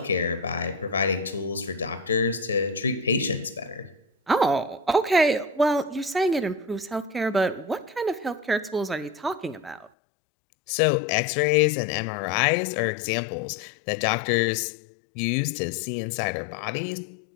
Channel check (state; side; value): drops out; right; at 9.9 s